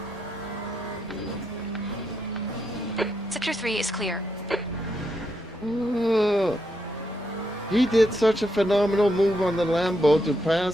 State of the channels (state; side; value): normal; both; correlation 0.80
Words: Sector 3 is clear. Oh, he did such a phenomenal move on the Lambo to